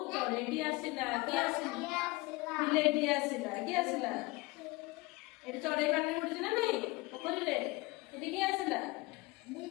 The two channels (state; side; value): quieter; right; 23.0 dB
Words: चढ़ेटी आसिला कि आसिला बिलेटी आसिला कि आसिला एटा चढ़े काटने बुड़ी ना नहीं पोखरी रे एटी कि आसिला